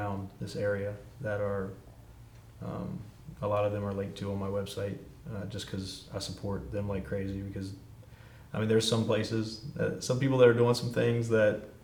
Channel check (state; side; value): identical; both; correlation 1.00